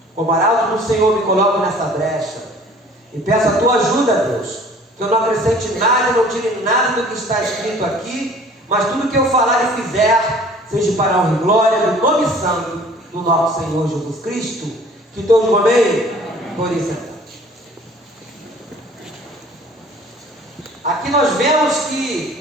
Como arauto do Senhor, me coloco nessa brecha e peço a tua ajuda, Deus, que eu não acrescente nada, não tire nada do que está escrito aqui, mas tudo que eu falar e fizer seja para a honra e glória do nome santo do nosso Senhor Jesus Cristo. Que todos digam amém? Por isso. Aqui nós vemos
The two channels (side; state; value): both; normal; correlation 0.50